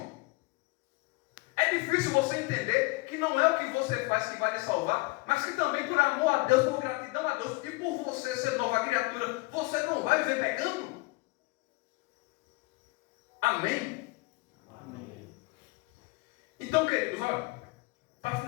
É difícil você entender que não é o que você faz que vai lhe salvar, mas que também por amor a Deus, por gratidão a Deus e por você ser nova criatura, você não vai viver pecando. Amém? Amém. Então, queridos, olha, para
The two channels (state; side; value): quieter; right; 24.8 dB